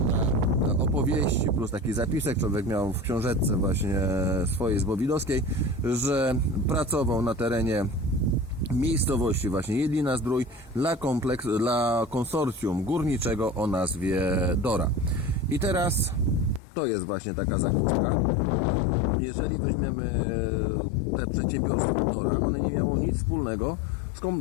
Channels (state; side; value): drops out; right; at 16.6 s